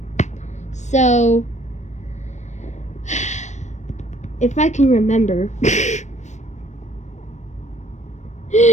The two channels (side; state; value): right; late; 0.34 ms